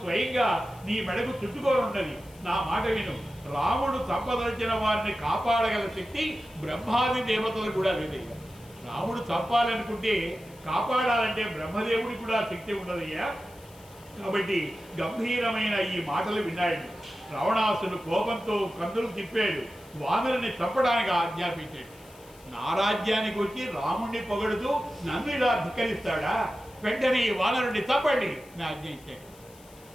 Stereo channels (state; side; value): noise; left; hiss, 24 dB below the sound